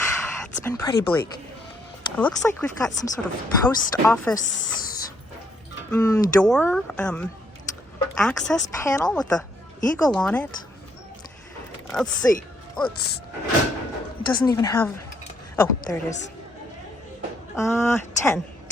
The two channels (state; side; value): normal; both; correlation 0.71